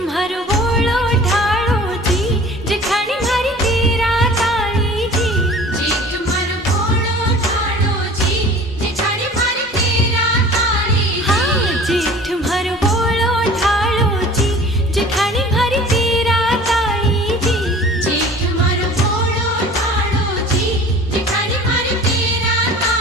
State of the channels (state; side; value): normal; both; correlation 0.44